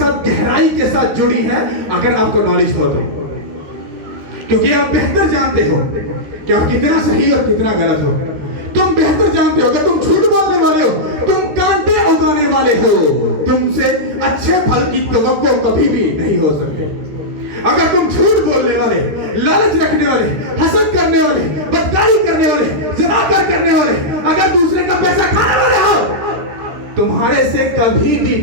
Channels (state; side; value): late; left; 13 ms